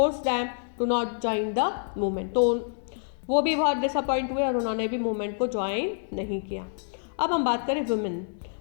them to not join the movement. तो वो भी बहुत डिसअपॉइंट हुए और उन्होंने भी मूवमेंट को ज्वाइन नहीं किया। अब हम बात करें वुमेन,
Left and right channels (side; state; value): right; silent; digital silence